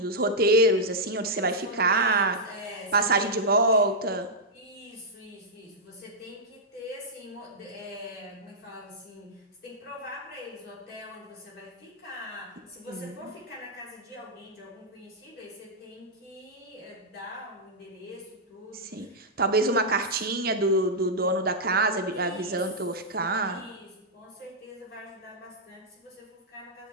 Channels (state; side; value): normal; both; correlation -0.07